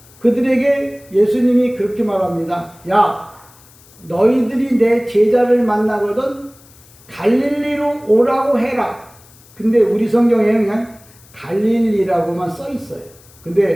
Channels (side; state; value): left; noise; hiss, 26 dB below the sound